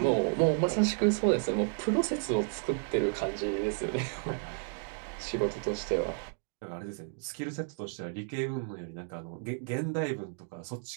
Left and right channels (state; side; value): silent; left; 56 dB below the other